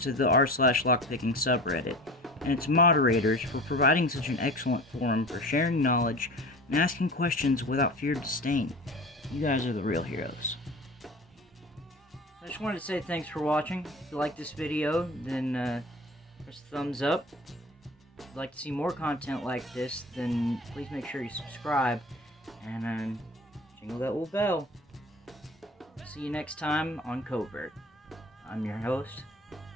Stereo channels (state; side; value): normal; both; correlation 0.38